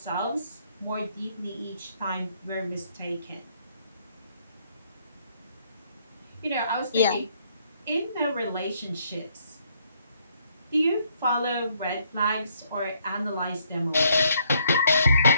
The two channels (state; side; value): inverted; both; correlation -0.69